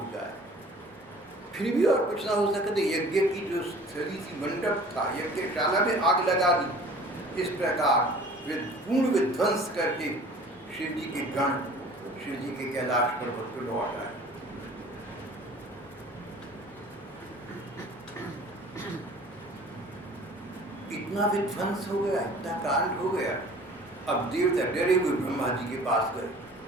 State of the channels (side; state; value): both; normal; correlation 0.47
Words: जाए। फिर भी और कुछ ना हो सके तो यज्ञ की जो स्थली थी, मंडप था, यज्ञशाला में आग लगा दी। इस प्रकार पूर्ण विध्वंस करके शिव जी के गण शिव जी के कैलाश पर्वत को लौट आए। इतना विध्वंस हो गया, इतना कांड हो गया। अब देवता डरे हुए ब्रह्मा जी के पास गए।